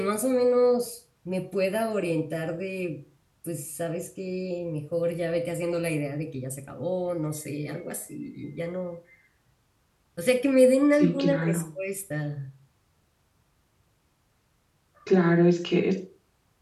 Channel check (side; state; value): both; identical; correlation 1.00